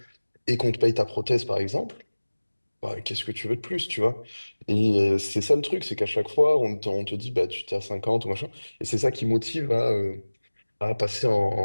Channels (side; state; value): both; inverted; correlation -1.00